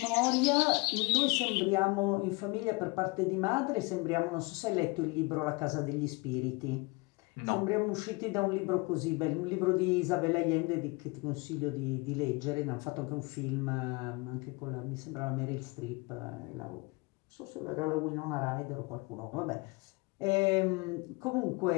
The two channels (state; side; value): quieter; right; 27.0 dB